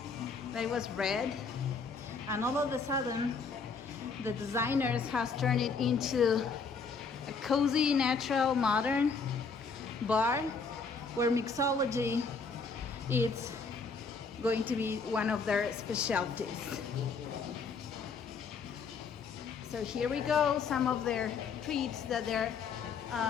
That was red, and all of a sudden the designers has turned it into a cozy, natural, modern bar where mixology is going to be one of their specialties. So here we go, some of their treats that they're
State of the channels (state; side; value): quieter; right; 4.9 dB